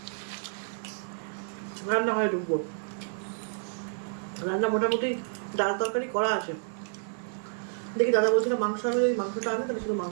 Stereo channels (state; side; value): silent; left; digital silence